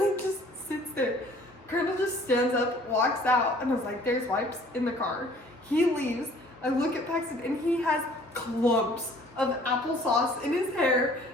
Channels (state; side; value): normal; both; correlation 0.54